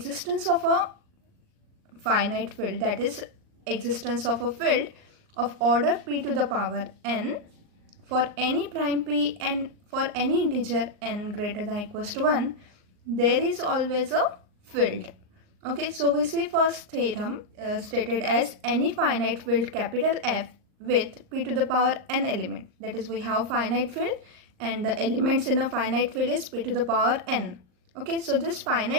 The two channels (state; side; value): late; left; 39 ms